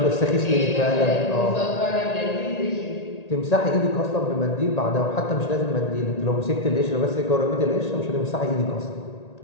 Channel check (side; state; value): right; late; 1.8 ms